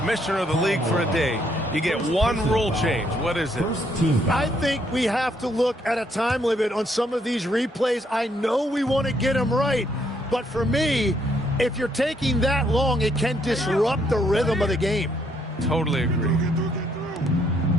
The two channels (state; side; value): normal; both; correlation 0.71